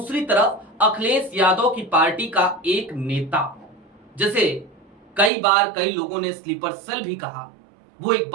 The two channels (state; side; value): drops out; left; at 5.3 s